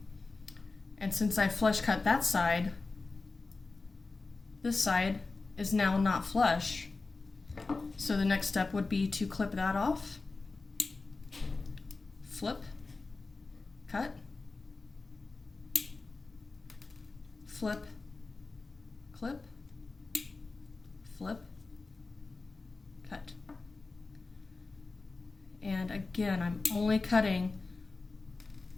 And since I flush cut that side, this side is now not flush. So the next step would be to clip that off, flip, cut, flip, clip, flip, cut. And again, I'm only cutting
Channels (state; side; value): quieter; right; 3.7 dB